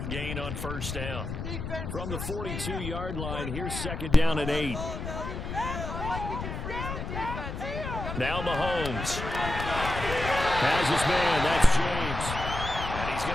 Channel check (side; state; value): left; noise; rumble, 6 dB below the sound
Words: gain on 1st down. From the 42-yard line, here's 2nd down and 8. Now Mahomes. Has his man, that's James. And he's